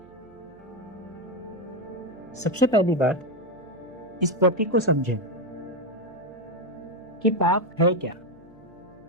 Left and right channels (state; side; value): noise; right; hum, 26 dB below the sound